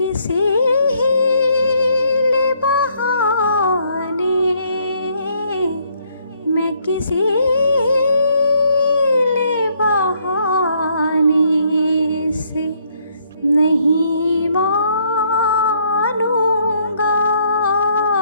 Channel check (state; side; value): inverted; both; correlation -0.69